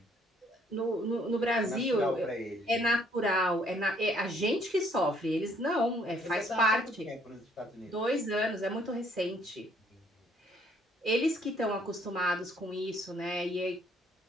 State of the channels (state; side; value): normal; both; correlation 0.65